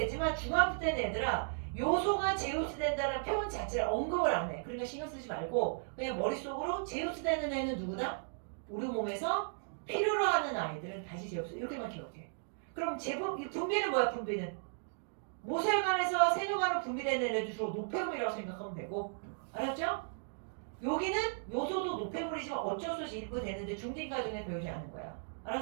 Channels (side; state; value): left; silent; digital silence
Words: 중학교 때는 얘들아 요소가 제흡수된다는 표현 자체를 언급을 안 해. 그러니까 신경 쓰지 말고 그냥 머릿속으로 제흡수되는 애는 누구다? 우리 몸에서 필요로 하는 아이들은 다시 제흡수 이렇게만 기억해. 그럼 분비는 뭐야? 분비는 모세혈관에서 세뇨관으로 분비되는 애들 주로 노폐물이라고 생각하면 되고 알았죠? 여기는 요소도 노폐물이지만 어쩔 수 없이 일부 되는데 중딩과정에 배우지 않는 거야.